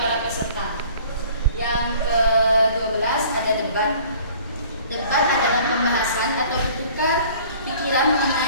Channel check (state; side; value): inverted; both; correlation -0.51